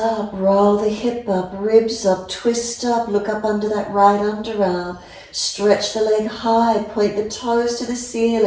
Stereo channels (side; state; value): both; identical; correlation 1.00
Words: roll the hip up, ribs up, twist up, look up under that right underarm. Stretch the leg high, point the toes to the